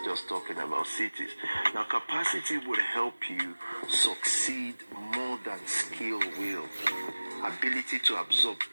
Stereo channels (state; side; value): inverted; both; correlation -1.00